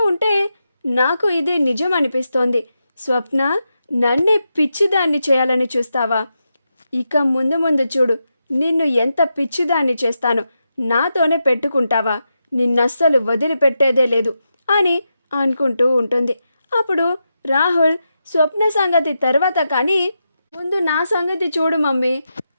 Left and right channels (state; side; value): inverted; both; correlation -0.87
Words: ఉంటే నాకు ఇదే నిజం అనిపిస్తోంది. స్వప్న నన్నే పిచ్చిదాన్ని చేయాలని చూస్తావా? ఇక ముందు ముందు చూడు, నిన్ను ఎంత పిచ్చిదాన్ని చేస్తాను, నాతోనే పెట్టుకుంటావా, నిన్నస్సలు వదిలిపెట్టేదే లేదు అని అనుకుంటూ ఉంటుంది. అప్పుడు రాహుల్, స్వప్న సంగతి తర్వాత కానీ ముందు నా సంగతి చూడు మమ్మీ,